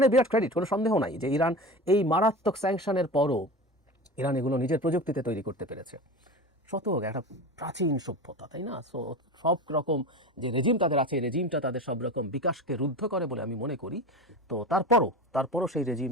বিরাট ক্রেডিট, কোনো সন্দেহ নাই যে ইরান এই মারাত্মক স্যাংশনের পরও ইরান এগুলো নিজের প্রযুক্তিতে তৈরি করতে পেরেছে। শতক একটা প্রাচীন সভ্যতা, তাই না? সো সব রকম যে রেজিম তাদের আছে, এই রেজিমটা তাদের সব রকম বিকাশকে রুদ্ধ করে বলে আমি মনে করি। তো তারপরও সেই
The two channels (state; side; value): normal; both; correlation 0.29